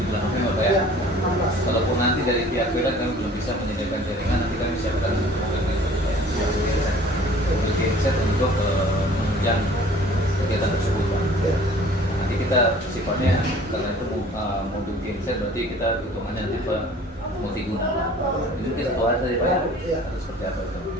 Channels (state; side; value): normal; both; correlation 0.50